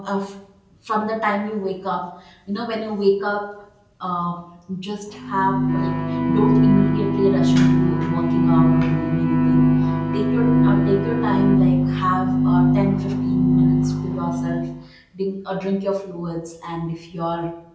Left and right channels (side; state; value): both; identical; correlation 1.00